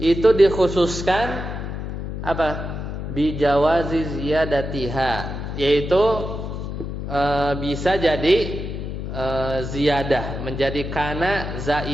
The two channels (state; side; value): noise; left; hum, 6 dB below the sound